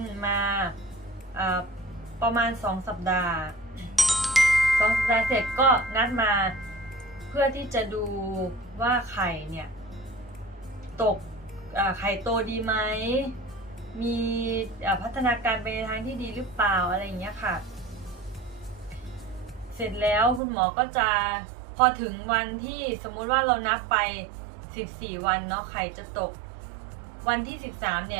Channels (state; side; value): drops out; left; at 20.4 s